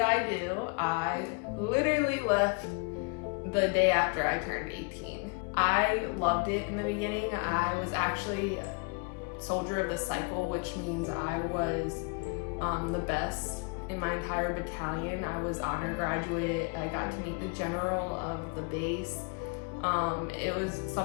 do? I literally left the day after I turned 18. I loved it in the beginning. I was actually soldier of the cycle, which means I was the best in my entire battalion. I was honor graduate. I got to meet the general of the base. It was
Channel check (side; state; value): right; quieter; 32.2 dB